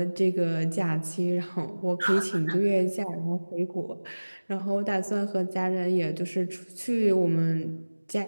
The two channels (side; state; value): both; inverted; correlation -1.00